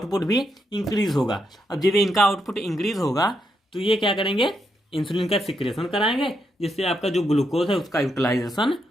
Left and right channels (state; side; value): normal; both; correlation 0.81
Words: भी इंक्रीज होगा। अब जब इनका आउटपुट इंक्रीज होगा तो ये क्या करेंगे, इंसुलिन का सिक्रेशन कराएंगे जिससे आपका जो ग्लूकोज है उसका यूटिलाइजेशन